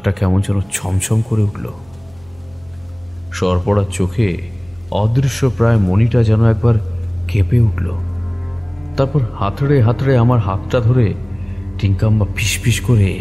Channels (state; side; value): noise; right; hum, 27 dB below the sound